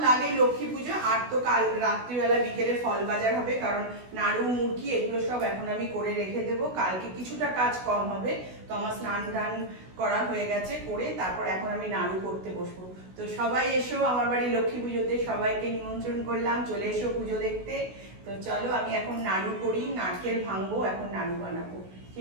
লাগে লক্ষ্মী পুজো। আর তো কাল রাত্রিবেলা বিকেলে ফল বাজার হবে, কারণ নাড়ু মুড়কি এগুলো সব এখন আমি করে রেখে দেবো। কালকে কিছুটা কাজ কম হবে। তো আমার স্নান টান করা হয়ে গেছে, করে তারপর এখন আমি নাড়ু করতে বসবো। তো সবাই এসো আমার বাড়ি লক্ষ্মী পুজোতে, সবাইকে নিমন্ত্রণ করলাম, চলে এসো পুজো দেখতে। তো চলো আমি এখন নাড়ু করি, নারকেল ভাঙবো, এখন নাড়ু বানাবো।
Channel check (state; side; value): late; left; 16 ms